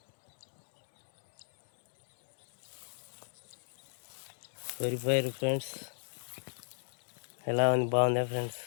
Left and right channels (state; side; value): silent; right; digital silence